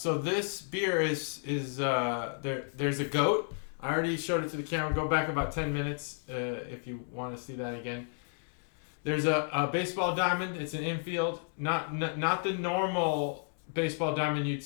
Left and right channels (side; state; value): right; silent; 56 dB below the other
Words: this beer is there. There's a goat. I already showed it to the camera. Go back about 10 minutes if you want to see that again. There's a baseball diamond. It's an infield, not the normal baseball diamond you'd